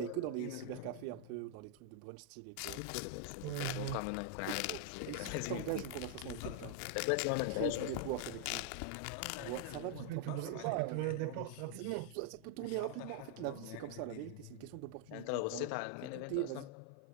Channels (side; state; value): both; different; correlation 0.00